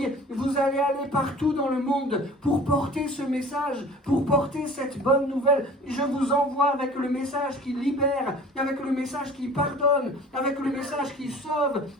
Vous allez aller partout dans le monde pour porter ce message, pour porter cette bonne nouvelle. Je vous envoie avec le message qui libère, avec le message qui pardonne, avec le message qui sauve,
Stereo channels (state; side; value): normal; both; correlation 0.44